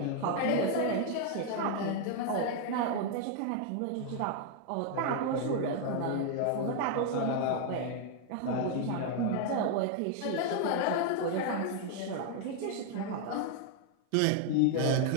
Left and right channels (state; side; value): different; both; correlation 0.00